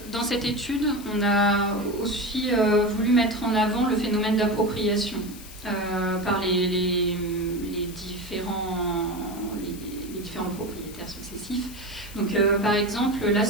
dans cette étude, on a aussi voulu mettre en avant le phénomène d'appropriation par les différents propriétaires successifs. Donc, par exemple, là,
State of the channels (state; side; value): noise; left; hiss, 17 dB below the sound